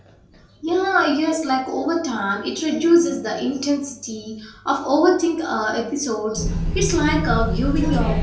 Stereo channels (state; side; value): identical; both; correlation 1.00